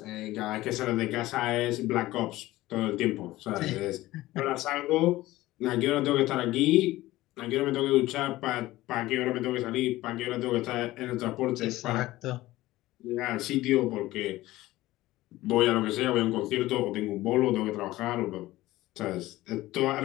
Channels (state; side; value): quieter; right; 17.2 dB